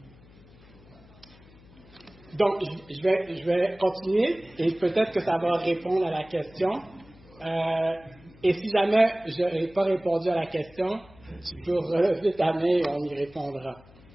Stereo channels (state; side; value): noise; left; hum, 24 dB below the sound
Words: Donc, je vais continuer et peut-être que ça va répondre à la question. Et si jamais je n'ai pas répondu à la question, tu peux relever ta main et on y répondra.